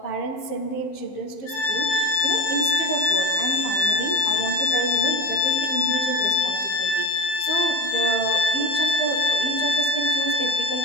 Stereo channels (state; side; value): late; right; 15 ms